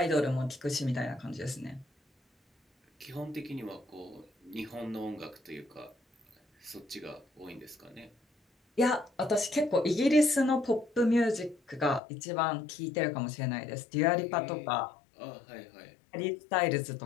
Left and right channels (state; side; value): drops out; right; at 12.0 s